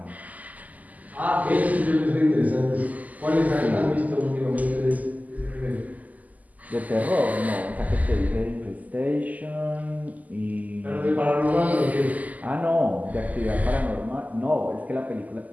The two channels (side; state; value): left; late; 0.078 ms